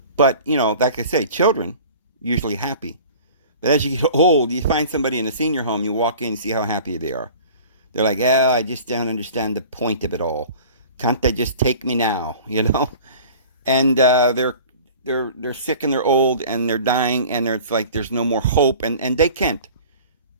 But, like I say, children usually happy. But as you get old, you find somebody in a senior home, you walk in and see how happy they are. They're like, I just don't understand the point of it all. Can't they just take me now, And they're sick and they're old and they're dying and it's like there's no more hope. And they can't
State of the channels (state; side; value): inverted; both; correlation -0.43